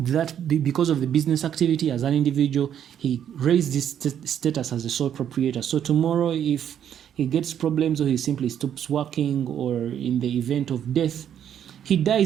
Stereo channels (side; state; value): left; quieter; 9.5 dB